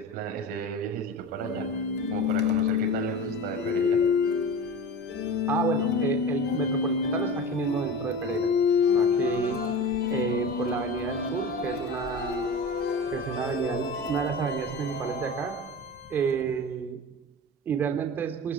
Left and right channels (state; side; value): normal; both; correlation 0.30